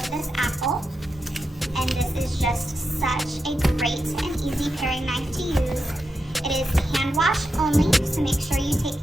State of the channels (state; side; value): normal; both; correlation 0.87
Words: this apple. And this is just such a great and easy paring knife to use. It is hand wash only, so make sure you take